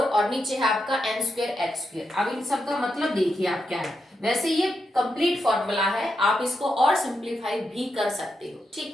और नीचे है आपका n स्क्वायर h स्क्वायर। अब इन सब का मतलब देखिए आप क्या है, वैसे ये कंप्लीट फॉर्मूला है, आप इसको और सिंप्लीफाई भी कर सकते हो, ठीक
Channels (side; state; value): both; normal; correlation 0.84